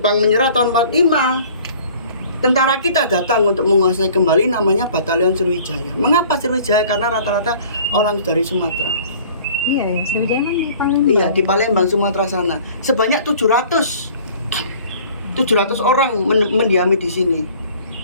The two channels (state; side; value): inverted; both; correlation -0.50